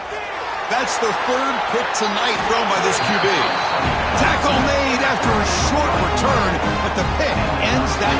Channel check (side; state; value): both; identical; correlation 1.00